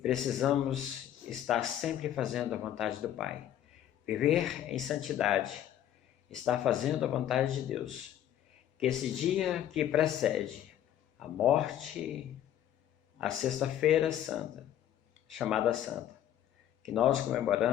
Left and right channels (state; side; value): quieter; right; 11.2 dB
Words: estar sempre fazendo a vontade do Pai. Viver em santidade, estar fazendo a vontade de Deus. Que esse dia que precede a morte, a Sexta-feira Santa, chamada Santa, que nós